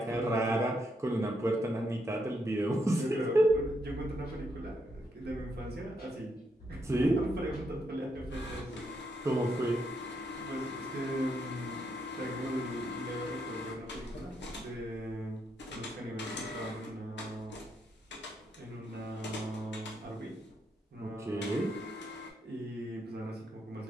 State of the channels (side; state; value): both; normal; correlation 0.78